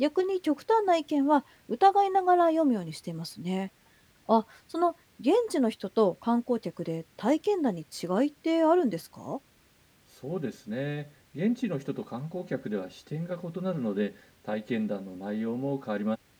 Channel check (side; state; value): both; identical; correlation 1.00